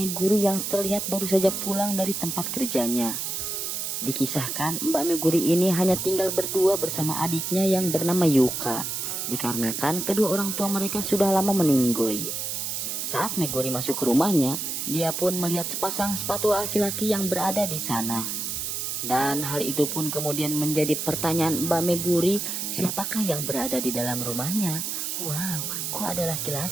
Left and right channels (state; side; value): noise; right; hiss, 3 dB below the sound